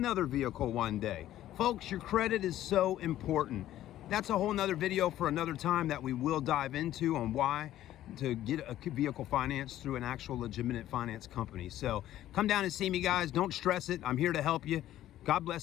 vehicle one day. Folks, your credit is so important. That's a whole nother video for another time that we will dive into on why to get a vehicle financed through an actual legitimate finance company. So come down and see me, guys. Don't stress it. I'm here to help you. God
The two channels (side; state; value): right; quieter; 13.2 dB